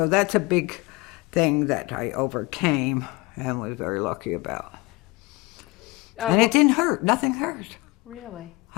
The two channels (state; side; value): quieter; right; 23.2 dB